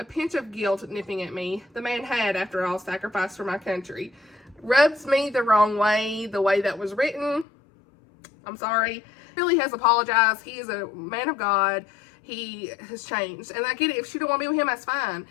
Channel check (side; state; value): right; drops out; at 7.5 s